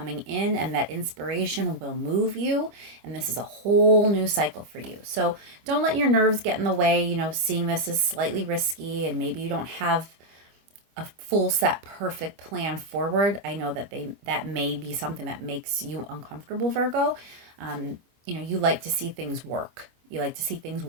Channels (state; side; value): late; left; 25 ms